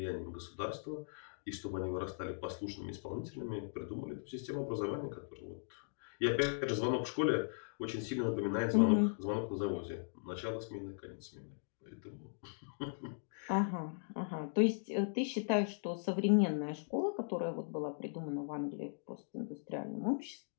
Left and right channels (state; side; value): silent; right; digital silence